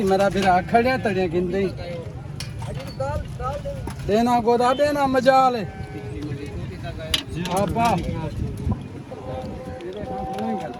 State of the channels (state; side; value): identical; both; correlation 1.00